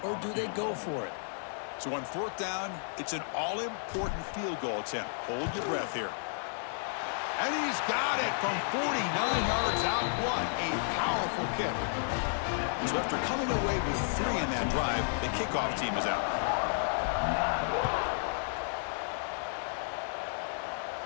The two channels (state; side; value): silent; right; digital silence